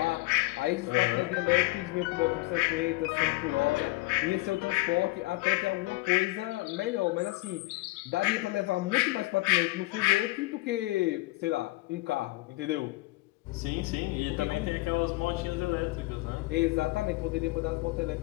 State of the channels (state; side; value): quieter; right; 21.1 dB